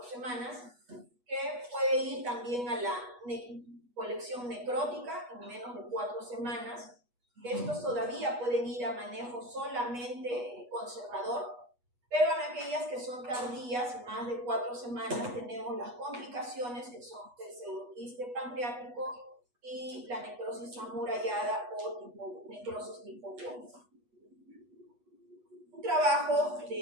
semanas, que puede ir también a la colección necrótica en menos de 4 semanas. Estos todavía pueden ir a manejo solamente conservador, pero en aquellas que son tardías, más de 4 semanas, tenemos las complicaciones que son el pseudoquiste pancreático y la necrosis amurallada o necrosis tipo CON. Un trabajo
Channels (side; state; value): left; late; 8.2 ms